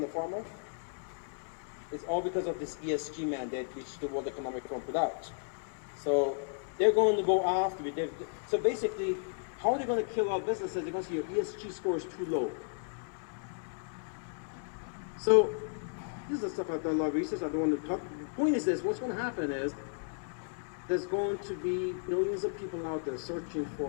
the farmer. It's all because of this ESG mandate which the World Economic Forum put out. So they're going to go after it. So basically, how are they going to kill our businesses? They're going to say your ESG score is too low. So this is the stuff I've done a lot of research. I don't want to talk. The point is this: what's going to happen is there's going to be millions of people out there searching for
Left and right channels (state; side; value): silent; right; digital silence